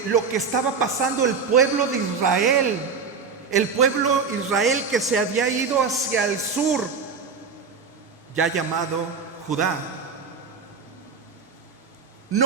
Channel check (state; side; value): quieter; left; 5.3 dB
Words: estaba pasando el pueblo de Israel, que se había ido hacia el sur, ya llamado Judá,